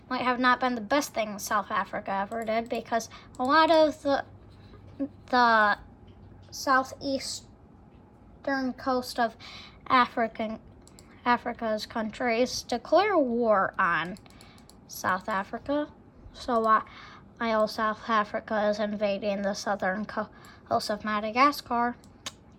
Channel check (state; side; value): identical; both; correlation 1.00